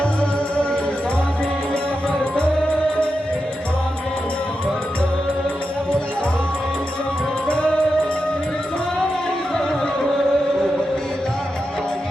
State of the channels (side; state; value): both; normal; correlation 0.88